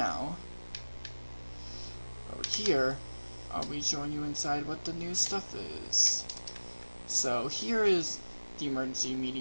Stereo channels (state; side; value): inverted; both; correlation -1.00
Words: over here I'll be showing you inside what the new stuff is. So here is the emergency